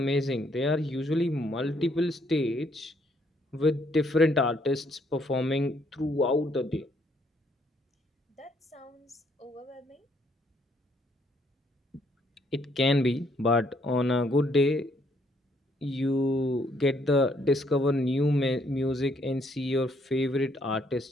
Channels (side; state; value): both; normal; correlation 0.69